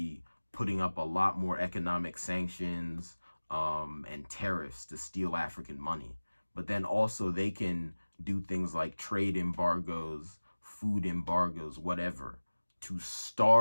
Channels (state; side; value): inverted; both; correlation -1.00